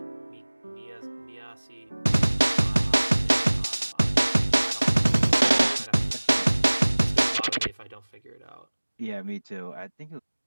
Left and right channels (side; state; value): both; inverted; correlation -1.00